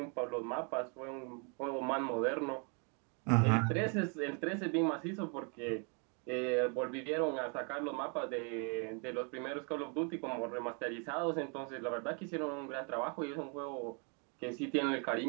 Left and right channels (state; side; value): quieter; left; 36.5 dB